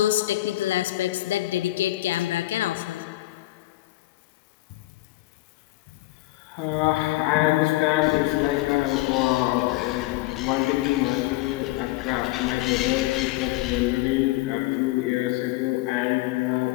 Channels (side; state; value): right; quieter; 18.5 dB